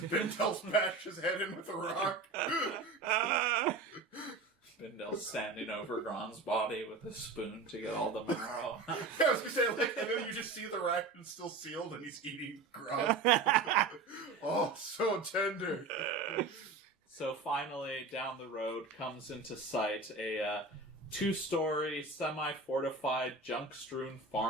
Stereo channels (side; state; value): left; quieter; 3.7 dB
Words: Bindel smashed his head in with a rock. Bindel's standing over Gron's body with a spoon to get all the marrow. I was gonna say, and then you just see the ration still sealed and he's eating Gron. Oh, so tender. So finally, down the road comes into sight a two-story, semi-fortified, junk-strewn